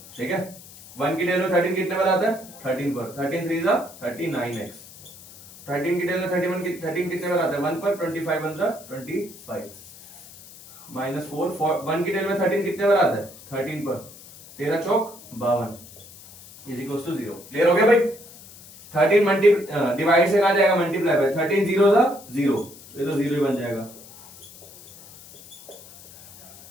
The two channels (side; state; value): left; noise; hiss, 19 dB below the sound